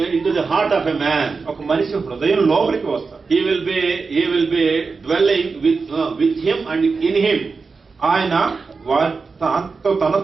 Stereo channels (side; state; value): left; quieter; 4.6 dB